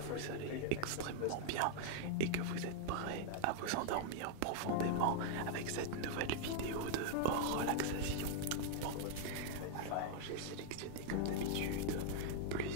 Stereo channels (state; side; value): different; both; correlation 0.00